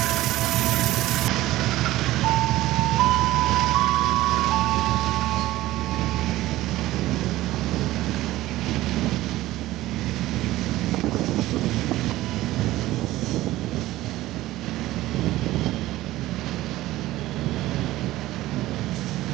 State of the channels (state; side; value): quieter; left; 16.4 dB